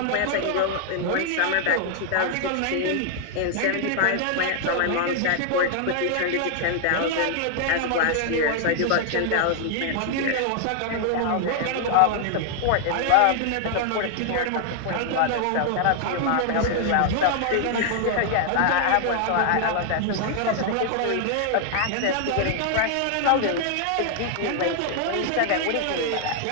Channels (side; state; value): both; different; correlation 0.00